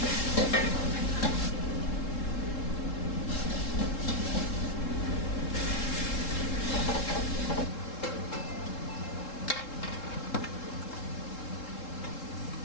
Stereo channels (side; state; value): right; late; 3.7 ms